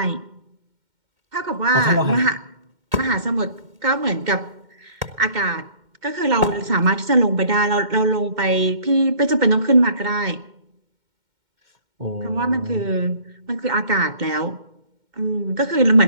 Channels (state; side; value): late; left; 2.1 ms